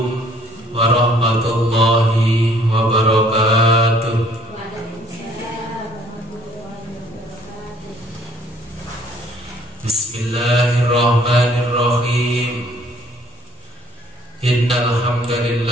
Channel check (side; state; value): both; normal; correlation 0.59